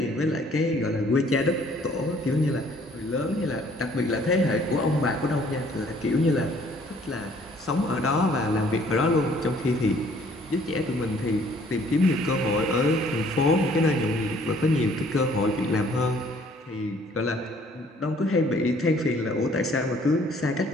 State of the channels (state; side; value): normal; both; correlation 0.59